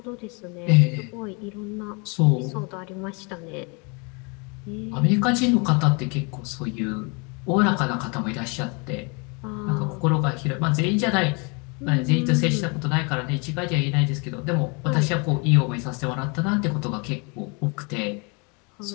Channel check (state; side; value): quieter; right; 32.2 dB